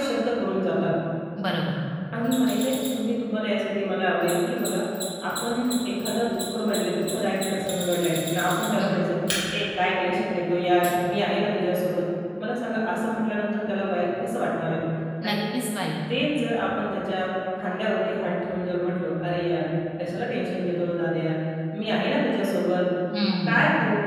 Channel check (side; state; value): both; identical; correlation 1.00